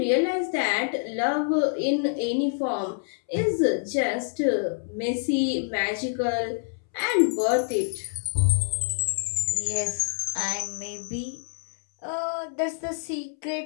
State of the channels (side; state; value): right; silent; 61 dB below the other